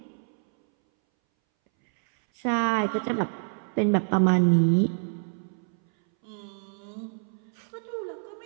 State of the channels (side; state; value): left; silent; 60 dB below the other